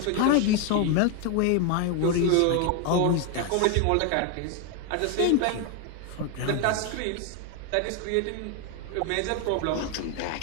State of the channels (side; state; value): both; different; correlation 0.01